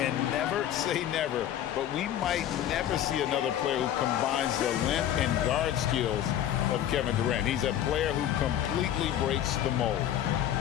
And never say never, but we might never see another player who combines the length and guard skills of Kevin Durant. He's a player who completely breaks the mold.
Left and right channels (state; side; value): quieter; right; 11.2 dB